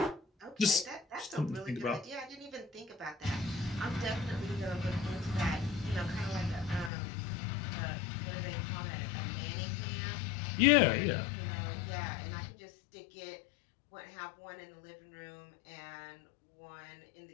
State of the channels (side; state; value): right; drops out; at 6.9 s